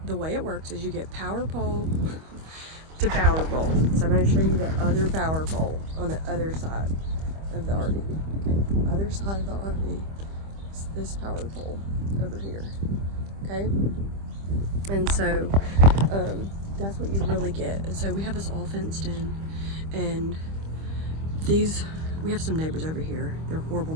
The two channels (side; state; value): left; late; 25 ms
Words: way it works is you get power pole to power pole. So I'm going to show you the other power pole on the other side of the RV. Okay, other side of the RV is this power pole over here. Okay. And so that's what you really get. And so we have this all fenced in, and we have some neighbors over here. They're horrible